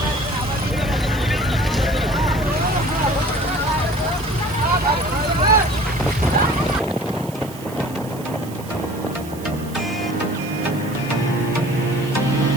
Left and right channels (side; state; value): right; noise; hiss, 18 dB below the sound